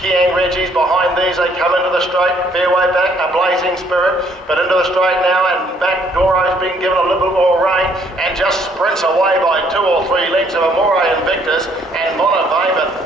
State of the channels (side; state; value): both; normal; correlation 0.65